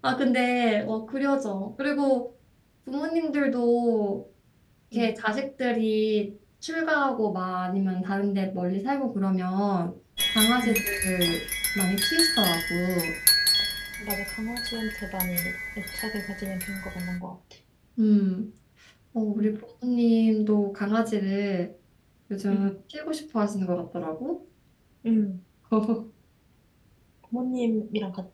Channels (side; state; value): both; identical; correlation 1.00